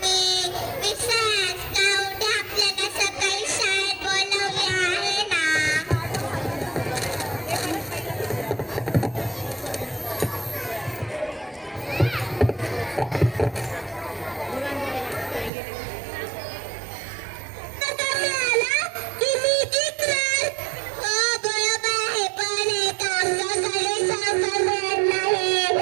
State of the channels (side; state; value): left; drops out; at 15.5 s